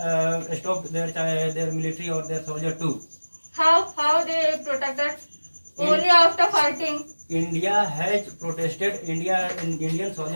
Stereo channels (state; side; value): inverted; both; correlation -1.00